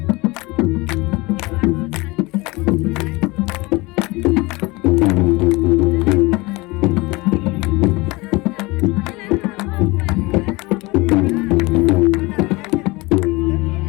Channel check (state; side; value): quieter; right; 23.5 dB